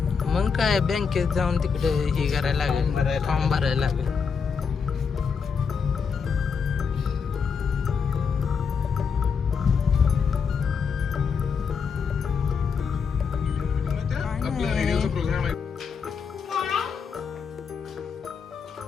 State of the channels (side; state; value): right; quieter; 6.0 dB